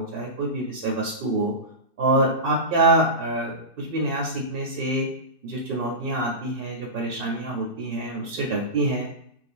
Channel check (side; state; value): left; late; 2.6 ms